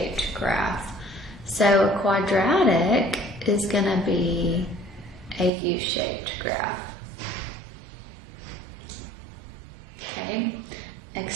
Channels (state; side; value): drops out; left; at 5.5 s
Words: graph. So a quadratic is going to be a U-shaped graph. Okay,